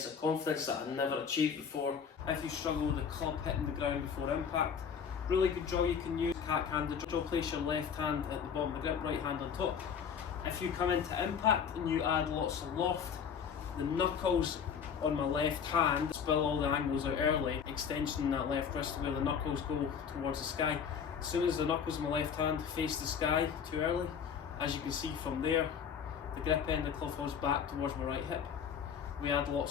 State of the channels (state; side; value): quieter; right; 7.2 dB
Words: of confidence that I'd never achieved before. If you struggle with the club hitting the ground before impact, really good drill you can use. Cat-handed drill, place your left hand at the bottom of the grip, right hand on top. If you come into impact and you add lots of loft, the knuckles on my left hand spill all the angles out early, extension in that left wrist where the knuckles go towards the sky. As soon as the knuckles on my left hand face the sky too early, as you can see from there, the grip end of the club falls back towards my right hip. We add